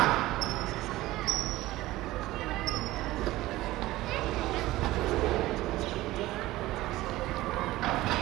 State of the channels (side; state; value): left; quieter; 17.4 dB